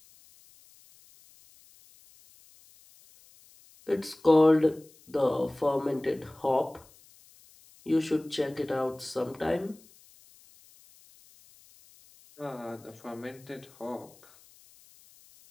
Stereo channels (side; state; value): left; noise; hiss, 27 dB below the sound